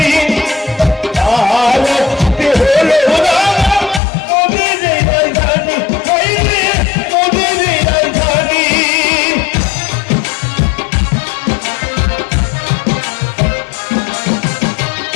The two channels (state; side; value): drops out; right; at 4.0 s